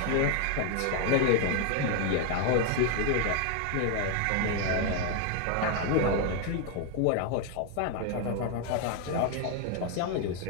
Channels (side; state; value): both; different; correlation 0.01